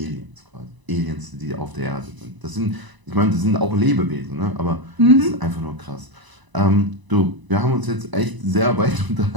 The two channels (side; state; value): left; late; 1.0 ms